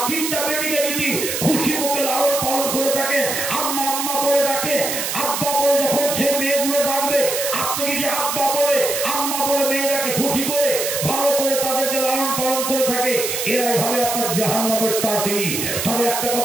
3টা বেটিকে যদি খুশি মুখে লালন পালন করে থাকে, আম্মা আম্মা বলে ডাকে, আব্বা বলে যখন সে মেয়েগুলো ডাকবে, আপনি যদি আব্বা বলে আম্মা বলে মেয়েরাকে খুশি করে ভালো করে তাদেরকে লালন পালন করে থাকে, এরাই হবে আপনার জাহান্নামের তাঁতি। তবে একটা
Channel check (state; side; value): noise; right; hiss, 2 dB below the sound